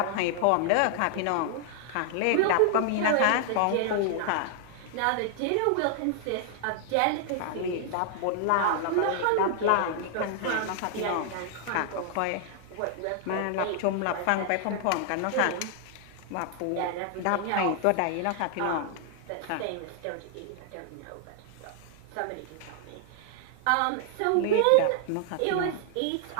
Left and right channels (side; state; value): both; different; correlation 0.00